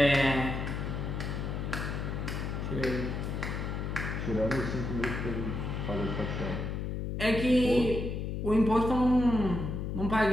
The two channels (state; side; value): noise; left; hum, 3 dB below the sound